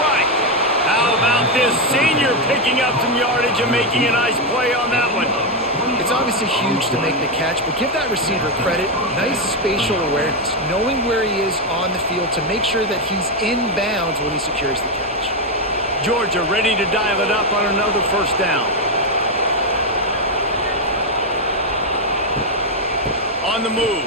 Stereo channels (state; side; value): normal; both; correlation 0.06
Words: How about this senior picking up some yardage and making a nice play on that one? It's obviously huge to make the catch, but give that receiver credit. Nice spatial awareness, knowing where he is on the field to make sure that he's in bounds when he secures the catch. Georgia ready to dial it up on another 1st down. On the